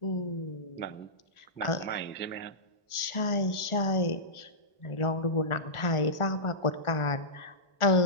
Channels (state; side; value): late; right; 1.4 ms